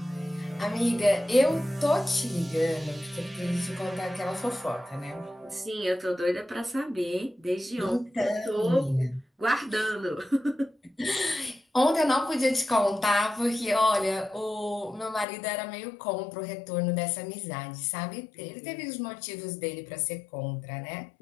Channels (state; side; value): drops out; right; at 15.2 s